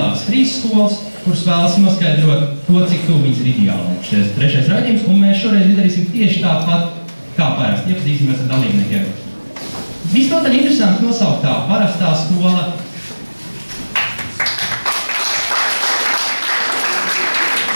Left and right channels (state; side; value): inverted; both; correlation -1.00